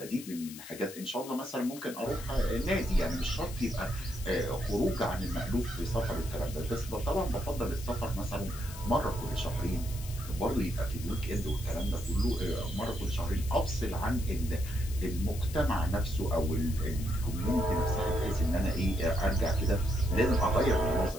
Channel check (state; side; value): noise; left; hiss, 14 dB below the sound